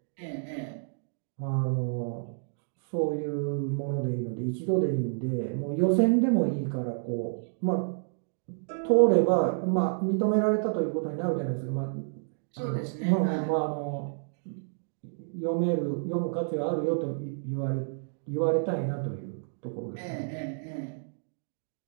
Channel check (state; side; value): silent; left; digital silence